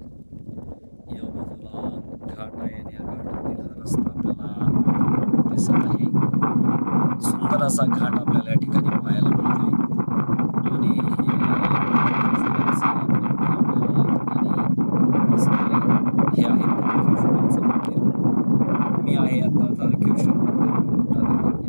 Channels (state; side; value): inverted; both; correlation -1.00